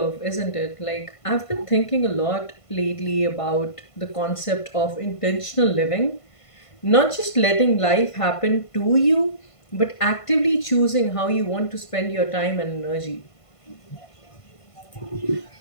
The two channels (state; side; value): late; right; 1.5 ms